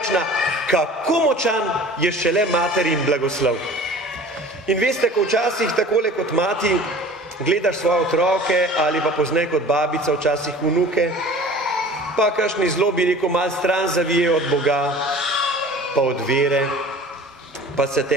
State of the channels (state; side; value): normal; both; correlation 0.43